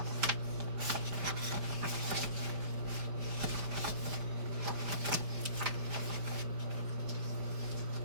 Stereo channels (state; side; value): late; left; 5.3 ms